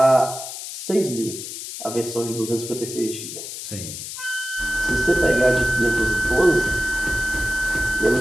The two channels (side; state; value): left; noise; hiss, 9 dB below the sound